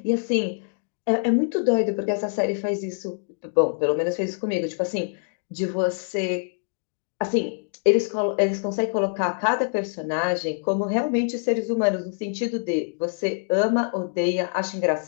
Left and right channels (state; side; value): silent; right; digital silence